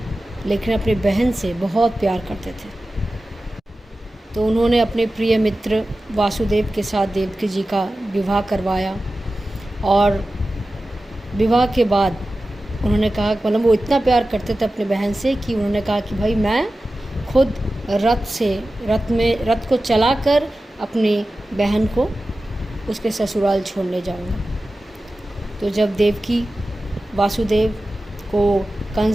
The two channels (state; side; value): normal; both; correlation 0.95